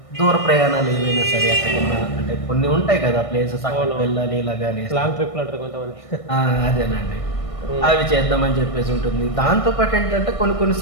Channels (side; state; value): right; late; 1.6 ms